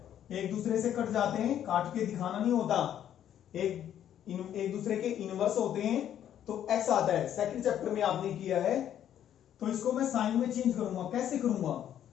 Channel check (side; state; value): right; quieter; 10.4 dB